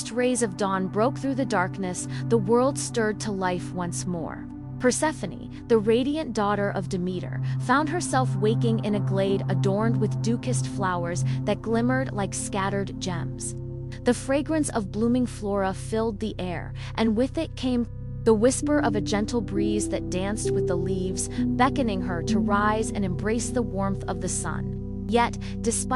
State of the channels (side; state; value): both; identical; correlation 1.00